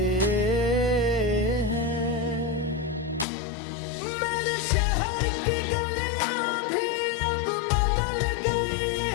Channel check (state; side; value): drops out; right; at 3.2 s